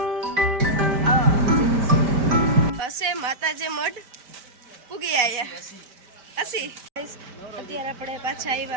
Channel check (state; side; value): late; left; 5.1 ms